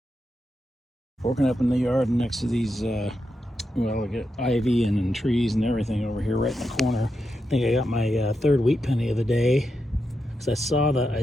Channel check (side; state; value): both; normal; correlation 0.86